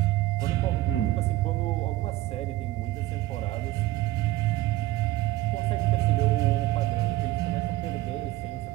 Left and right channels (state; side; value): quieter; left; 16.8 dB